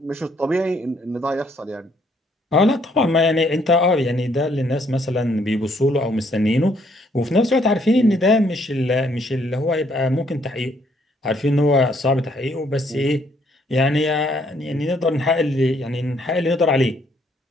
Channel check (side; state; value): both; normal; correlation 0.68